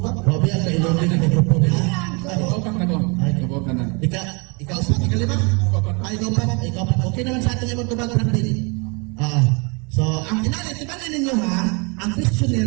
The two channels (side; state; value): left; quieter; 31.5 dB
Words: Robbie, ang kailong din ang mikrofon nila. Kaupak na ko, kaupak na. Ikaw lima? Ikaw pa. Okay naman sa ating imong tubag, Brad Paul. So, ang inalit, tibanin ninyo ha, ang